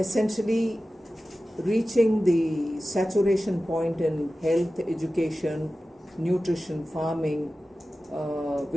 reaching the saturation point in health, education, nutrition, farming,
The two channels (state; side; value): normal; both; correlation 0.95